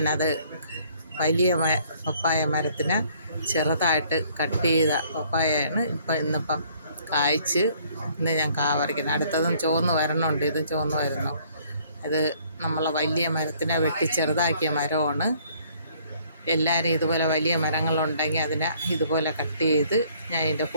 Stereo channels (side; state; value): both; inverted; correlation -0.61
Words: വലിയ പപ്പായ മരത്തിന് ചെറുതായിട്ട് കട്ട് ചെയ്ത പപ്പായയാണ് ഇന്നിപ്പം കായ്ച്ച് ഇന്ന് ഞാൻ പറിക്കുന്നത്. അടുത്തതും ചുവന്ന് വരണുണ്ട്. ഇത് ചുവന്ന് വരുന്നു. ഇത് നമ്മളെ വലിയ മരത്തിനെ വെട്ടി ചെറുതാക്കിയ മരമാണ്. എല്ലാവരും ഇതുപോലെ വലിയ മരങ്ങളുണ്ടെങ്കിൽ അതിനെ ഇതുപോലെ കട്ട് ചെയ്ത് ഞാൻ ഇതിൻ്റെ